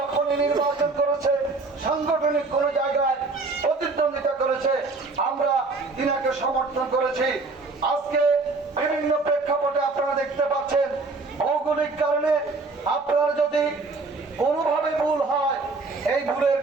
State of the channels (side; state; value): left; quieter; 3.7 dB